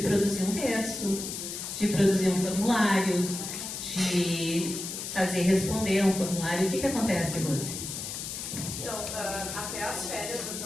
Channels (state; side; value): noise; left; hiss, 6 dB below the sound